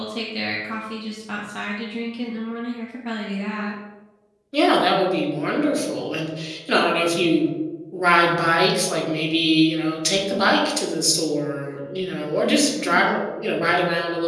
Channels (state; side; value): identical; both; correlation 1.00